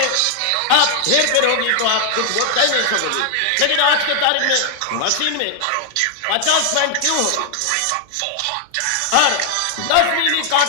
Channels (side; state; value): both; different; correlation 0.00